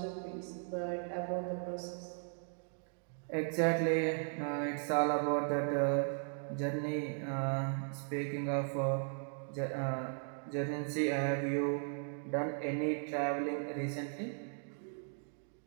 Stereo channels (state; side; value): silent; left; 53 dB below the other